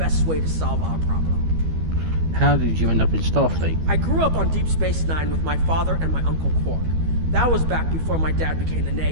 way to solve our problem. How did you end up in Starfleet? I grew up on Deep Space Nine with my father and my Uncle Quark. That was back before my dad became the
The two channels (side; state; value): left; late; 12 ms